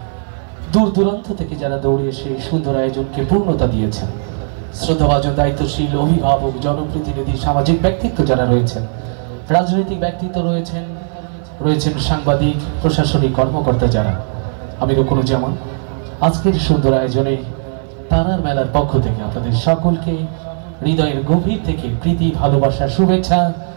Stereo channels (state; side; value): silent; left; 57 dB below the other